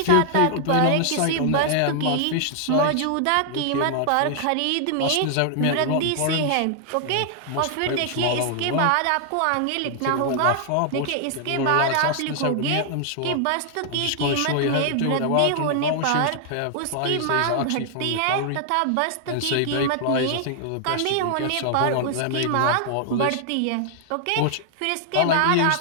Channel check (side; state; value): both; different; correlation 0.00